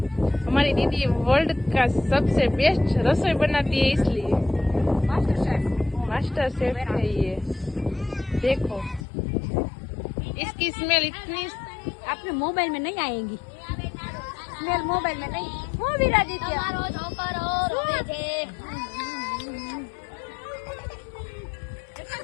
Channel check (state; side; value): drops out; right; at 9.1 s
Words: हमारी दीदी वर्ल्ड का सबसे बेस्ट रसोई बनाती है इसलिए मास्टर शेफ है ये. देखो इसकी स्मेल इतनी आपने मोबाइल में नहीं आएगी. स्मेल मोबाइल में नहीं. वो भी रादित्य